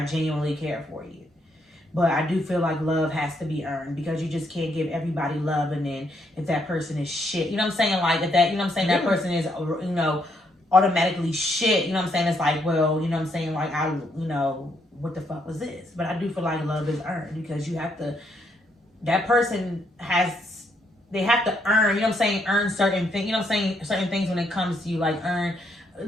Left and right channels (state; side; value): normal; both; correlation 0.74